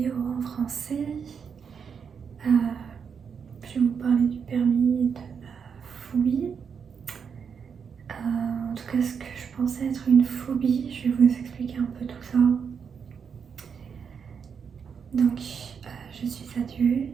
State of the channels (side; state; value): left; quieter; 6.6 dB